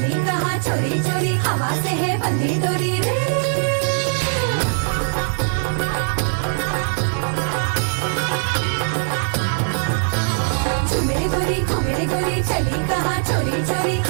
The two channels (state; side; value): silent; left; digital silence